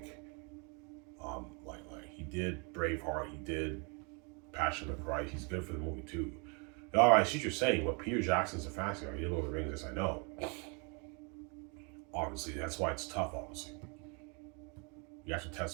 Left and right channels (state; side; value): quieter; left; 34.0 dB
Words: he did Braveheart, he did Passion of the Christ. He's good for the movie too. All right, I see what you're saying. But Peter Jackson's a fantasy guy. He did Lord of the Rings. Yes, I know. Obviously, that's why it's tough. Obviously, you have to